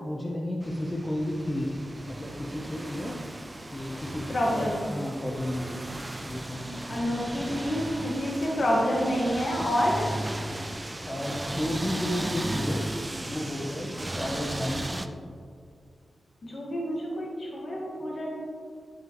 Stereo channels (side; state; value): both; normal; correlation 0.93